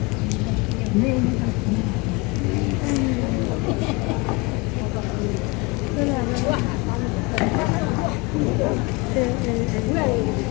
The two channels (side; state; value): right; quieter; 26.0 dB